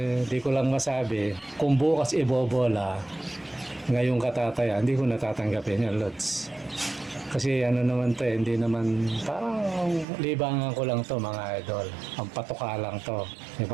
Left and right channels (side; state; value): left; drops out; at 10.1 s